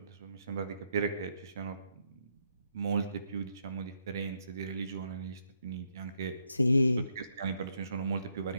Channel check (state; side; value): inverted; both; correlation -0.76